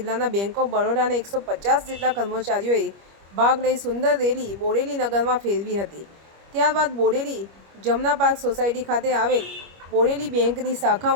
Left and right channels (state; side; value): late; left; 25 ms